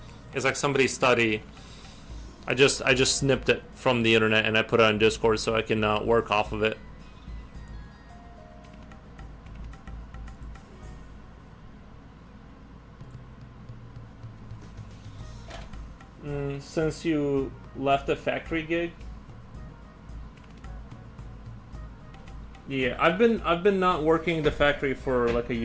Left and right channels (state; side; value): identical; both; correlation 1.00